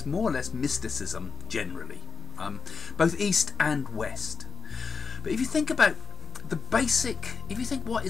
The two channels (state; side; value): quieter; right; 4.9 dB